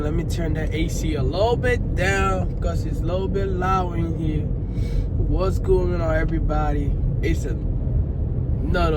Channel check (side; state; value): both; identical; correlation 1.00